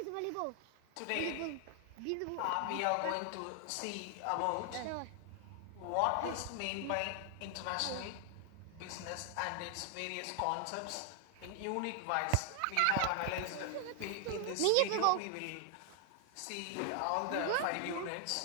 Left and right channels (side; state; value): both; different; correlation 0.00